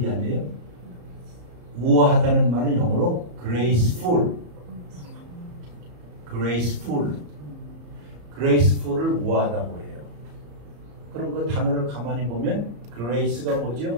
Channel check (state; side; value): late; left; 34 ms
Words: 아니에요? 우아하다는 말은 영어로 graceful. graceful을 우아하다고 해요. 그럼 그 단어를 가만히 보면 grace가